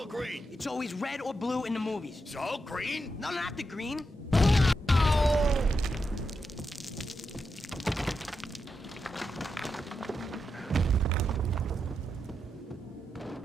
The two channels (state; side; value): normal; both; correlation 0.86